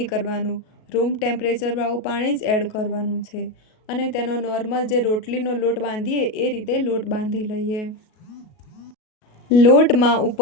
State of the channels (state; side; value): late; right; 37 ms